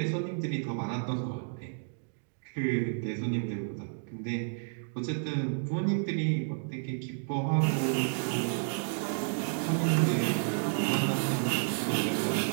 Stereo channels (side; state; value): left; silent; digital silence